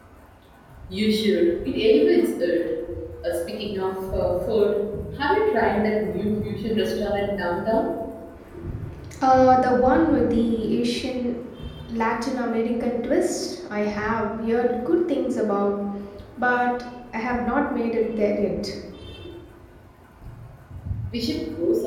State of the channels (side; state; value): both; identical; correlation 1.00